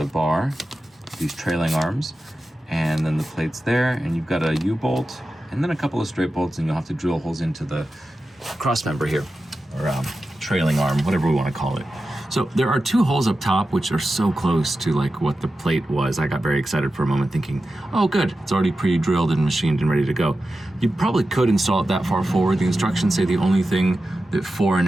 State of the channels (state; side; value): normal; both; correlation 0.92